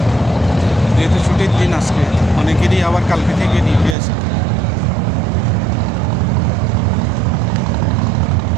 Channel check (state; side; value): drops out; left; at 4.0 s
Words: যেহেতু ছুটির দিন আজকে, অনেকেরই আবার কালকে থেকে ডিউটি আছে।